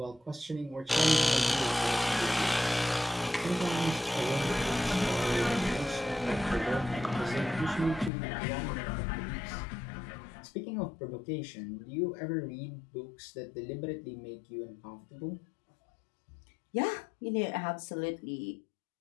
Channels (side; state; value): right; drops out; at 8.1 s